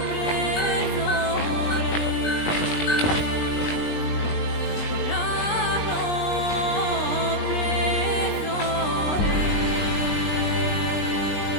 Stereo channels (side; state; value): right; late; 20 ms